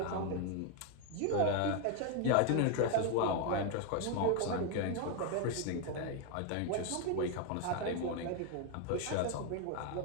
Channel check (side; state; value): both; different; correlation 0.01